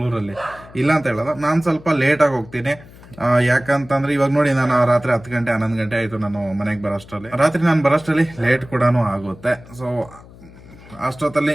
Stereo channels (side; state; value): left; noise; hum, 21 dB below the sound